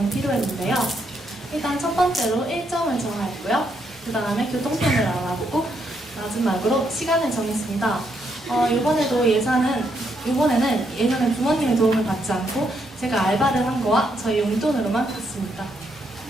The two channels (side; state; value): both; normal; correlation 0.76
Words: 필요했는데요. 일단 첫 번째로 일정을 정하였고요. 그 다음에 교통편을 알아보고 마지막으로 시간을 정했습니다. 이번에는 예전에 부모님의 도움을 받지 않고 제가 알바를 한 거와 저희 용돈으로만 갔습니다.